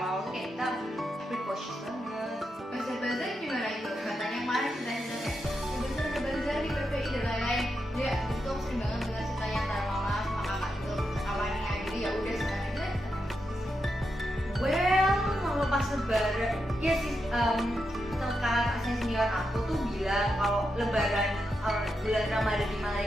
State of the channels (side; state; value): both; normal; correlation 0.85